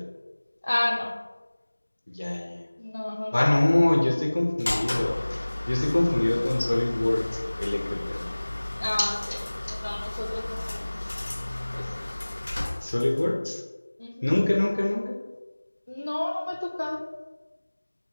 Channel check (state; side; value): inverted; both; correlation -1.00